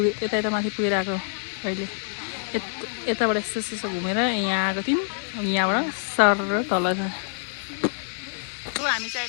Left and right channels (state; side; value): silent; right; digital silence